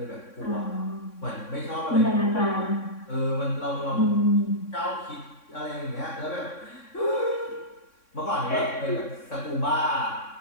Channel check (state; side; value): late; right; 3.6 ms